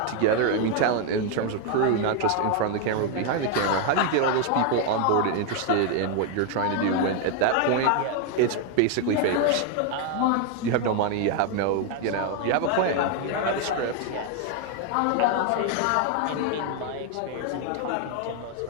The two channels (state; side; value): different; both; correlation 0.01